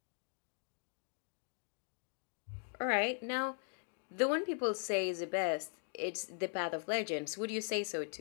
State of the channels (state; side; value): silent; right; 51 dB below the other